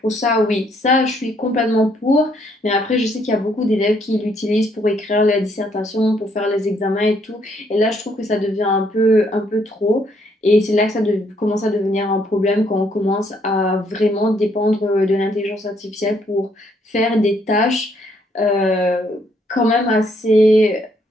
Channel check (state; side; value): normal; both; correlation 0.70